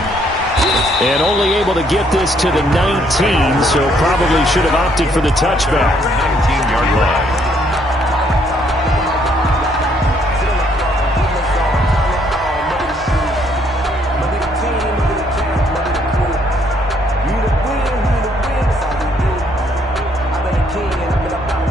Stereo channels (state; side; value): normal; both; correlation 0.68